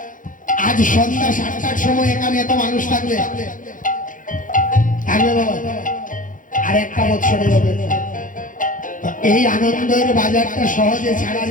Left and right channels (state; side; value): late; right; 0.38 ms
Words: আজ সন্ধ্যা 7টার সময় এখানে এত মানুষ থাকবে থাকবে বাবা, আর একটা বছরে হবে। এই আনন্দের বাজারটা সহজে ছাড়ার